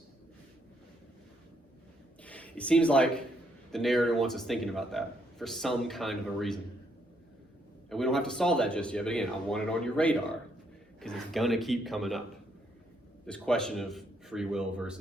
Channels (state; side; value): normal; both; correlation 0.73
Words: It seems like the narrator wants us thinking about that for some kind of a reason. And we don't have to solve that just yet, but again, I want it on your radar because it's going to keep coming up. This question of free will